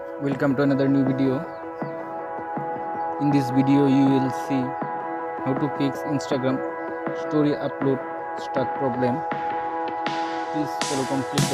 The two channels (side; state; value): both; identical; correlation 1.00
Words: Welcome to another new video. In this video you will see how to fix Instagram story upload stuck problem. Please follow complete